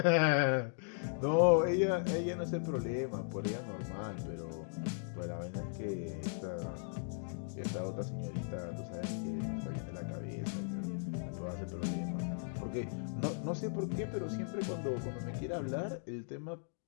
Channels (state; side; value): silent; right; digital silence